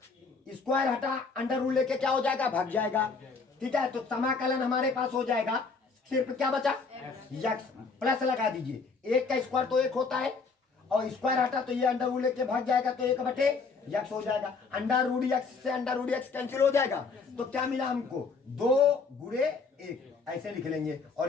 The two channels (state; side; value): quieter; right; 4.6 dB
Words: स्क्वायर हटा √ लेके क्या हो जाएगा भाग जाएगा। ठीक है, तो समाकलन हमारे पास हो जाएगा, सिर्फ क्या बचा x प्लस लगा दीजिए, 1 का स्क्वायर तो 1 होता है और स्क्वायर हटा तो ये √ लेके भाग जाएगा तो 1/x हो जाएगा, √x से √x कैंसिल हो जाएगा तो क्या मिला हमको 2 × 1 ऐसे लिख लेंगे और